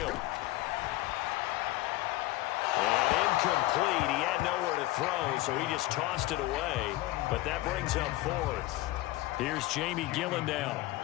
And incomplete. He had nowhere to throw, so he just tossed it away. But that brings up fourth. Here's Jamie Gillen now.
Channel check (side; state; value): right; quieter; 17.9 dB